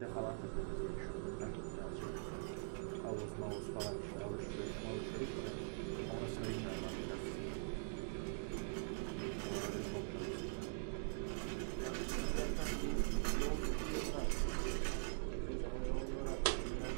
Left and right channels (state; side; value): silent; left; digital silence